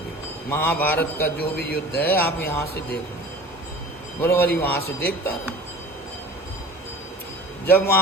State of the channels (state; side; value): normal; both; correlation 0.41